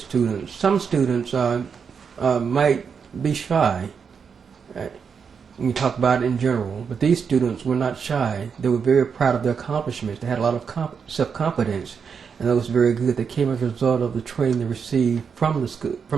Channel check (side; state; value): left; quieter; 6.3 dB